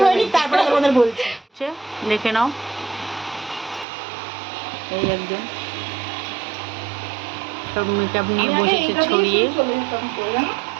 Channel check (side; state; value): left; drops out; at 3.9 s